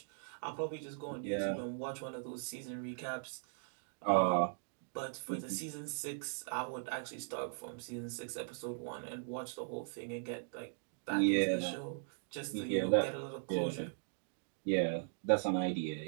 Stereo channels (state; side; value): silent; left; digital silence